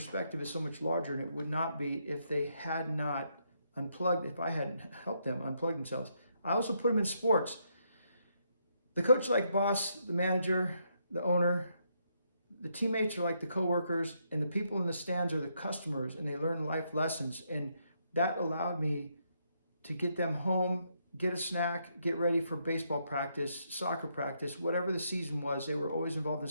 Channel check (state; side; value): inverted; both; correlation -0.76